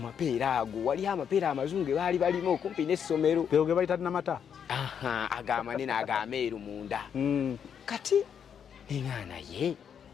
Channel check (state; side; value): quieter; right; 7.9 dB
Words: ago wali amapeera amazungu ge baali balimu okumpi n'essomero teo ge bayita namata agamanene agameeru munda kati ninga naye